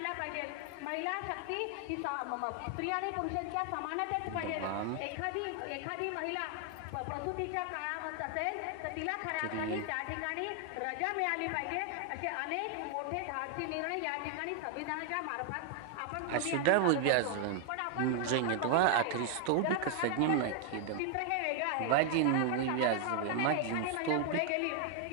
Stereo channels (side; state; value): both; different; correlation 0.00